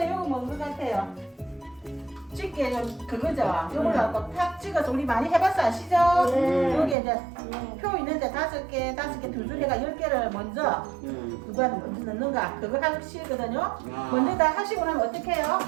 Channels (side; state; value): left; drops out; at 7.0 s